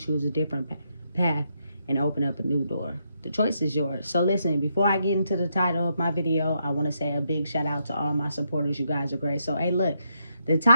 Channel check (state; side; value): inverted; both; correlation -0.79